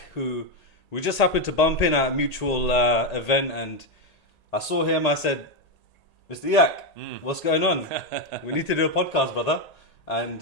who we just happened to bump in at a mutual event, and I saw him. I said, Mr. Iyak, what's going on? We need to do a podcast, brother.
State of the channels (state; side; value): late; right; 1.8 ms